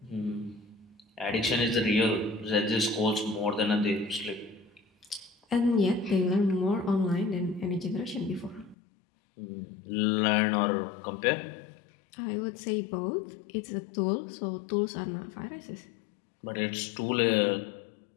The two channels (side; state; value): right; drops out; at 8.8 s